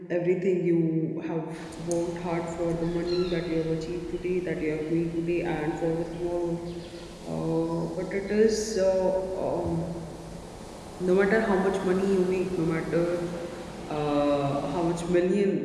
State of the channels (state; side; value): identical; both; correlation 1.00